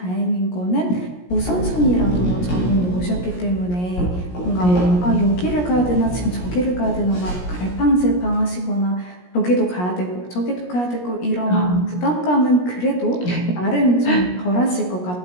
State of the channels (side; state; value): right; late; 17 ms